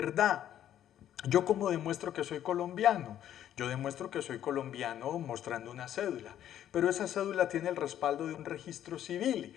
¿Yo cómo demuestro que soy colombiano? Yo demuestro que soy colombiano mostrando una cédula, pero esa cédula tiene el respaldo de un registro civil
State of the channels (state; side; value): quieter; right; 11.1 dB